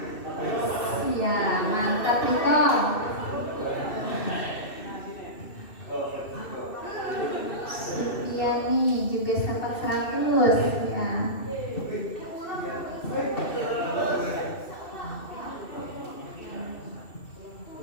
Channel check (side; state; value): right; late; 2.7 ms